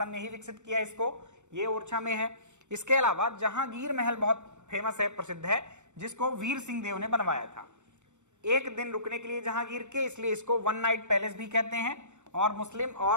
ने ही विकसित किया इसको, ये ओरछा में है। इसके अलावा जहांगीर महल बहुत फेमस है, प्रसिद्ध है, जिसको वीर सिंह देव ने बनवाया था। एक दिन रुकने के लिए जहांगीर के, इसलिए इसको 1 नाइट पैलेस भी कहते हैं। और मुस्लिम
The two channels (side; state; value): left; late; 0.84 ms